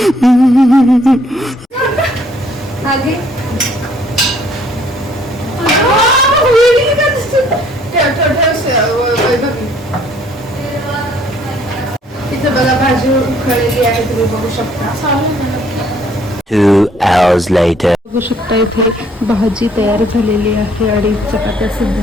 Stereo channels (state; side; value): normal; both; correlation 0.62